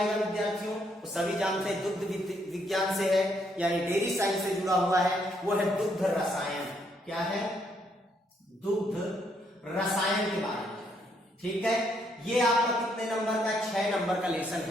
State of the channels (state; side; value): normal; both; correlation 0.73